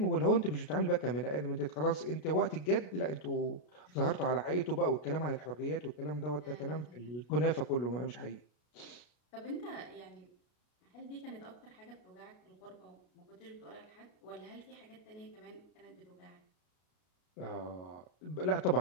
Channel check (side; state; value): right; late; 33 ms